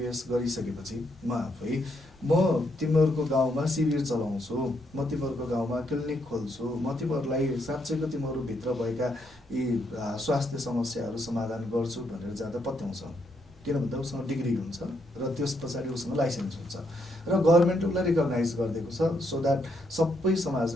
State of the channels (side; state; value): both; normal; correlation 0.76